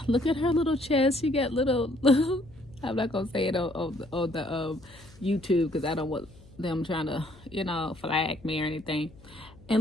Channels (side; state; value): left; noise; hum, 24 dB below the sound